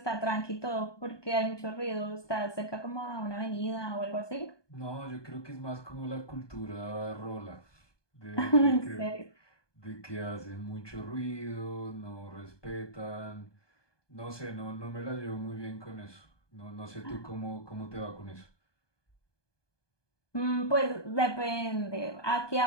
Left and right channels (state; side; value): late; right; 1.2 ms